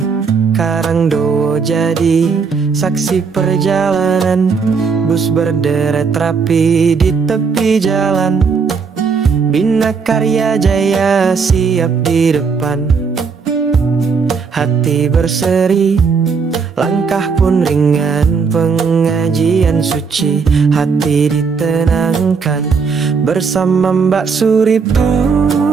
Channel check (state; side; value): quieter; left; 5.4 dB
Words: Karangdowo jadi saksi perjalanan. Bus berderet rapi di tepi jalan. Bina Karya Jaya siap di depan. Hati berseri, langkah pun ringan. Pengajian suci, hati ditenangkan. Bersama Mbak Suriptur